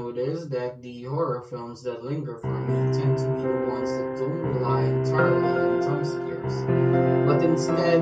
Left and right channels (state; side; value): identical; both; correlation 1.00